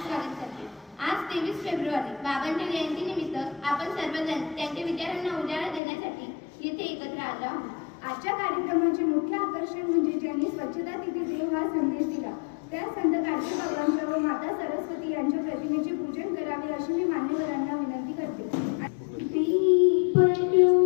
स्वागत करते. आज 23 फेब्रुवारी बाबांच्या जयंती निमित्त आपण सर्वजण त्यांच्या विचारांना उजाळा देण्यासाठी येथे एकत्र आलो आहोत. आजच्या कार्यक्रमाचे मुख्य आकर्षण म्हणजे ज्यांनी स्वच्छता तिथे देव हा संदेश दिला त्या संत गाडगे बाबांच्या व माता सरस्वती यांच्या प्रतिमेचे पूजन करावे अशी मी मान्यवरांना विनंती करते. दीप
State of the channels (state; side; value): drops out; right; at 5.8 s